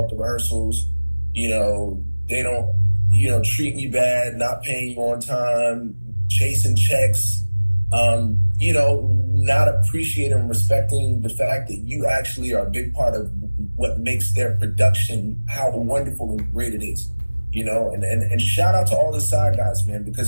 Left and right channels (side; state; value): both; inverted; correlation -1.00